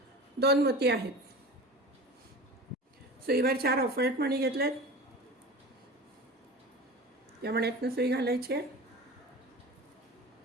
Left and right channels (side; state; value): both; normal; correlation 0.34